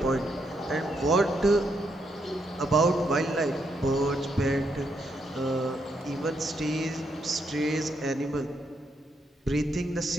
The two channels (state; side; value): normal; both; correlation 0.78